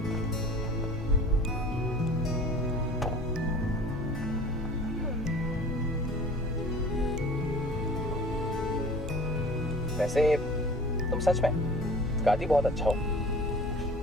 वैसे तुम सच में गाती बहुत अच्छा हो।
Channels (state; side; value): normal; both; correlation 0.44